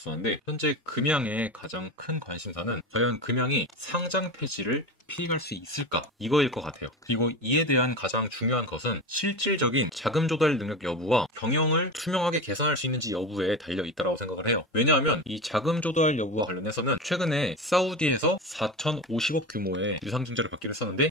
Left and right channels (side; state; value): both; normal; correlation 0.26